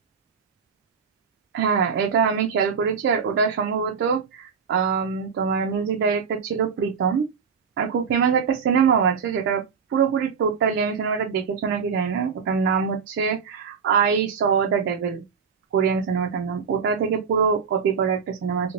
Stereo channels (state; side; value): quieter; left; 6.1 dB